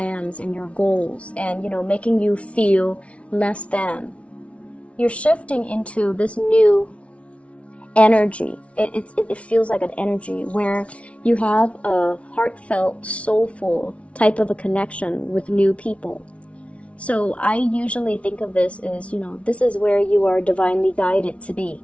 and your goals and, making you feel less than. you're shifting into this new energy. It feels like an energy where you have a heartfelt, soulful type of a connection with new people. So I usually think of this as, this is where you are divinely guided to be.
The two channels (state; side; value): late; right; 0.063 ms